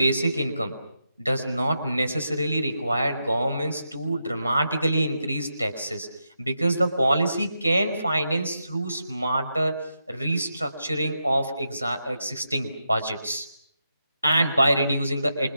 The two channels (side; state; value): both; inverted; correlation -0.85